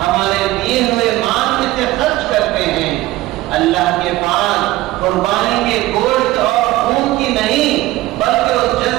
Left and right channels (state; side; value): quieter; left; 17.3 dB